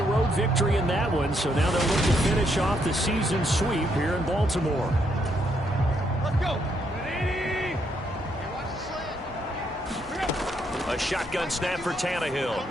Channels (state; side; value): normal; both; correlation 0.75